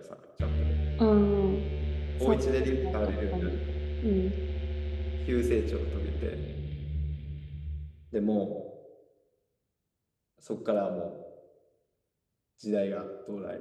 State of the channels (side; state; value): both; identical; correlation 1.00